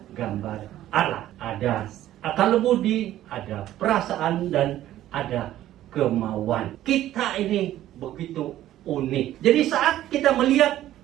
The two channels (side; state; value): left; quieter; 13.3 dB